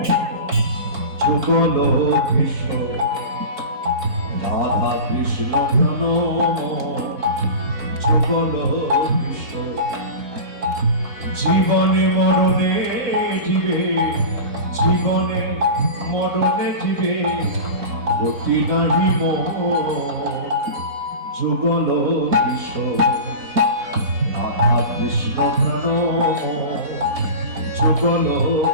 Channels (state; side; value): late; left; 4.2 ms